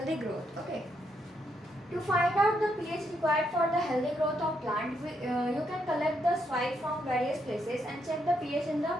growth. Okay. To find out the pH required for the healthy growth of plant, you can collect the soil from various places and check the pH in the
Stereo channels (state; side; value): normal; both; correlation 0.77